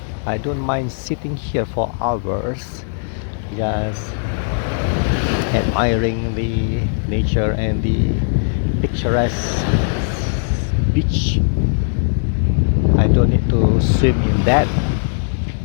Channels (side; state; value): right; silent; 66 dB below the other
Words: I don't mind sitting here for hours just admiring the nature and the picturesque beach. I I don't need to swim in that